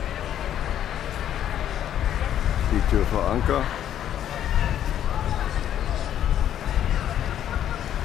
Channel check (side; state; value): right; quieter; 10.6 dB